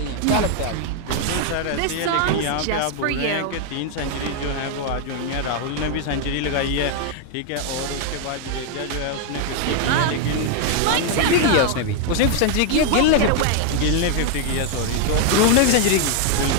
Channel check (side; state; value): both; different; correlation 0.00